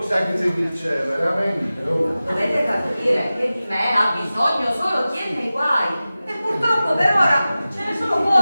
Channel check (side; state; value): both; inverted; correlation -0.96